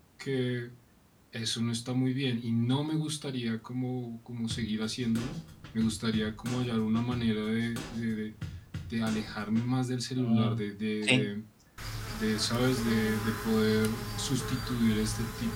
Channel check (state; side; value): identical; both; correlation 1.00